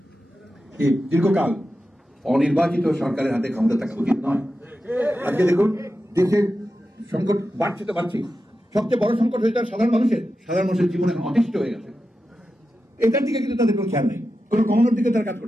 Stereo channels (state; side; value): normal; both; correlation 0.91